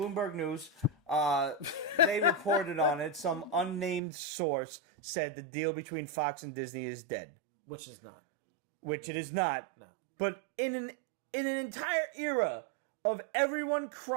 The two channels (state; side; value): drops out; left; at 4.0 s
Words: Bloomberg News. They reported on it. Some unnamed source said the deal between Fox and Disney is dead. Which is not. Which it is not. No. But in an entire era of everyone